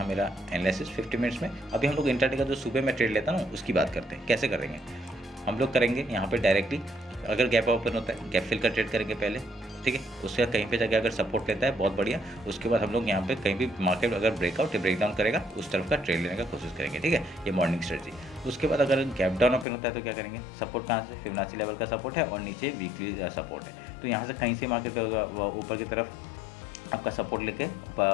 मेरा एनालिसिस 50 मिनट्स में। अभी हम लोग इंट्राडे का जो सुबह में ट्रेड लेता हूँ उसकी बात करते हैं कैसे करेंगे। हम लोग करेंगे यहाँ पे डायरेक्टली, अगर गैप ओपन होता है गैप फिल का ट्रेड करेंगे पहले। ठीक है, उसके बाद कहीं पे जाके अगर सपोर्ट लेता है बहुत बढ़िया, उसके बाद हम लोग यहाँ पे कहीं भी मार्केट अगर ब्रेकआउट या ब्रेकडाउन करेगा उस तरफ का ट्रेड लेने का कोशिश करेंगे। ठीक है, ये मॉर्निंग स्ट्रेटजी। उसके बाद अगर गैप डाउन ओपन होता है तो क्या करेंगे, सपोर्ट कहाँ से, फिबोनाची लेवल का सपोर्ट है और नीचे वीकली सपोर्ट है, तो यहाँ से कहीं से मार्केट ऊपर की तरफ आपका सपोर्ट लेके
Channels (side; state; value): right; drops out; at 19.7 s